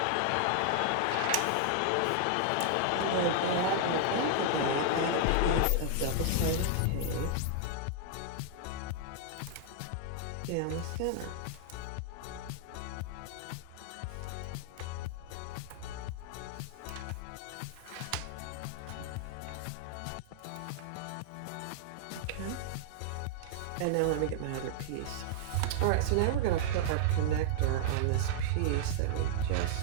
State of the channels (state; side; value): different; both; correlation -0.01